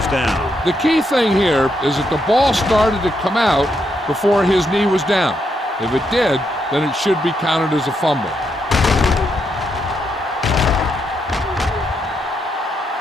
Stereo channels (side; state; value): both; normal; correlation 0.79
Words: down. The key thing here is that the ball started to come out before his knee was down. If it did, then it should be counted as a fumble.